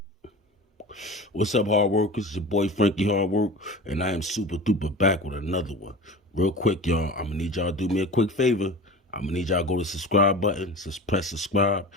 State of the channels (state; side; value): normal; both; correlation 0.34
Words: What's up, hard workers? It's your boy Frankie Hardwork, and I am super duper back with another one. Real quick, y'all, I'm gonna need y'all to do me a quick favor. I'm gonna need y'all to go to the subscribe button, just press subscribe,